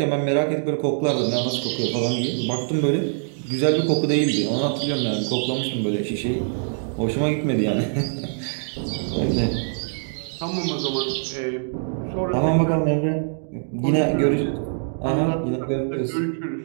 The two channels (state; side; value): silent; left; digital silence